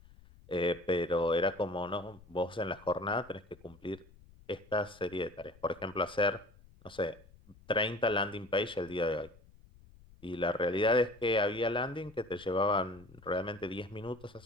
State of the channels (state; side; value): noise; left; rumble, 24 dB below the sound